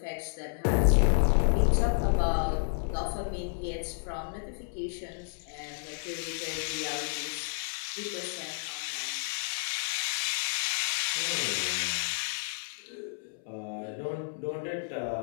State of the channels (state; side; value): silent; right; 57 dB below the other